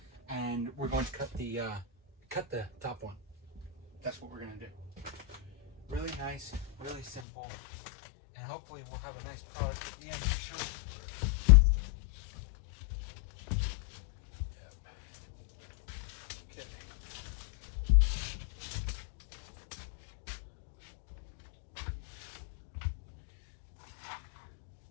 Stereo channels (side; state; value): right; drops out; at 7.2 s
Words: And we're going to cut the top one. That's what we're going to do. Really nice, really simple, And hopefully we'll have a nice product at the end to show.